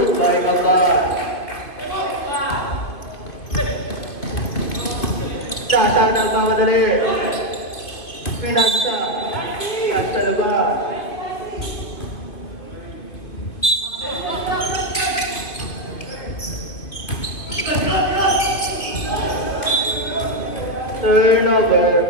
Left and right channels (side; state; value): right; late; 2.8 ms